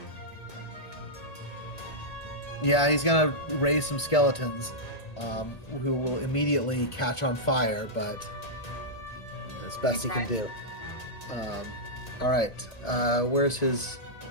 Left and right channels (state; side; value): late; right; 1.8 ms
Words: Yeah, he's going to raise some skeletons who will immediately catch on fire, but that's best he can do. All right, where's his